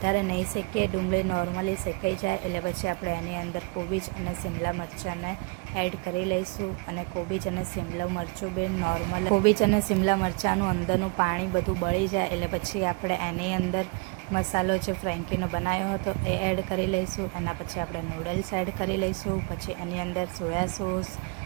નહીં શેકીએ, ડુંગળી નોર્મલી શેકાઈ જાય એટલે પછી આપણે એની અંદર કોબીજ અને શિમલા મરચાંને એડ કરી લઈશું. અને કોબીજ અને શિમલા મરચું બી નોર્મલ, કોબીજ અને શિમલા મરચાંનું અંદરનું પાણી બધું બળી જાય એટલે પછી આપણે એની અંદર મસાલો જે ફ્રેન્કીનો બનાવ્યો હતો એ એડ કરી લઈશું. એના પછી આપણે નૂડલ્સ એડ કરી લઈશું. પછી એની અંદર soya sauce,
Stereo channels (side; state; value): left; quieter; 29.7 dB